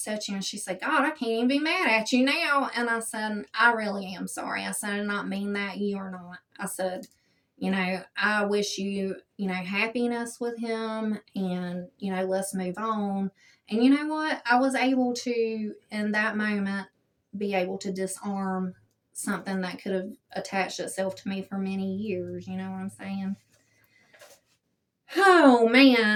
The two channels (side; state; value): both; identical; correlation 1.00